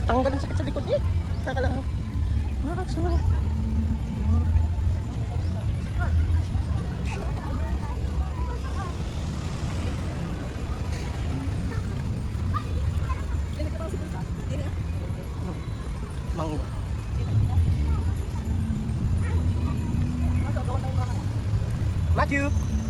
Tanggal ang sakit sa likod eh. Saka lang. Sarap. Mango. Matthew!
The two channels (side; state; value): both; identical; correlation 1.00